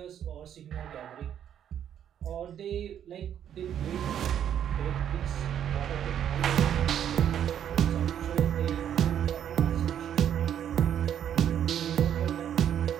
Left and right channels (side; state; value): left; quieter; 9.7 dB